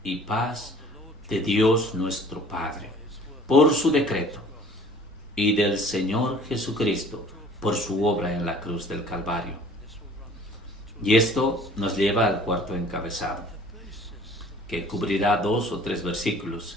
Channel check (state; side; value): normal; both; correlation 0.50